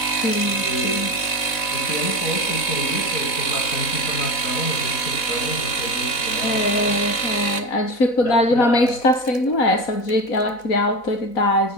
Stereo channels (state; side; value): late; right; 4.0 ms